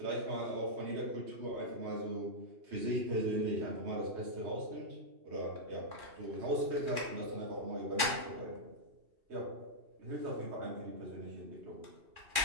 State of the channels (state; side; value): late; left; 2.4 ms